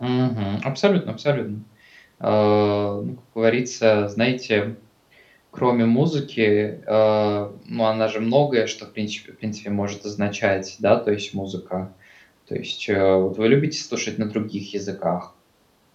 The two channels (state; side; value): identical; both; correlation 1.00